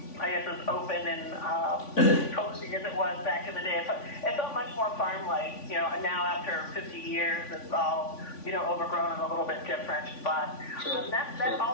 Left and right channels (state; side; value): late; right; 3.5 ms